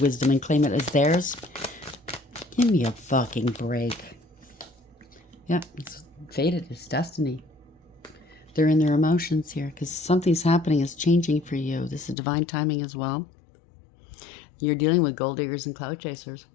wisdom and claim it as theirs. Give me a fucking break. Yeah, it's fated. It's destiny. They're in their emotions here because something's happening, is changing for you. This is divine timing as well. You're dealing with gold diggers and cloud chasers.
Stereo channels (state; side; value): drops out; right; at 12.2 s